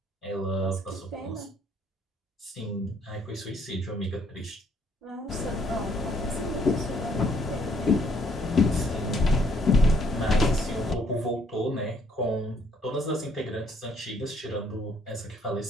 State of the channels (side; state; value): both; normal; correlation 0.66